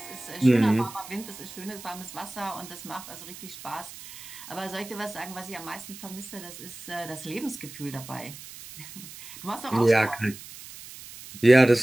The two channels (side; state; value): right; noise; hiss, 15 dB below the sound